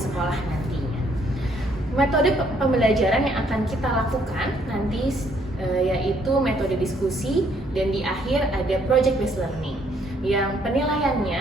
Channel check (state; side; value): normal; both; correlation 0.67